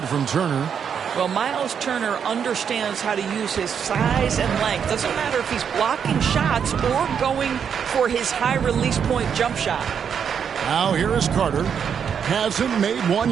from Turner. Well, Miles Turner understands how to use his size and length. Doesn't matter if he's blocking shots or going for his high release point jump shot. Now here is Carter. Hasn't made one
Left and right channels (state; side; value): quieter; left; 7.5 dB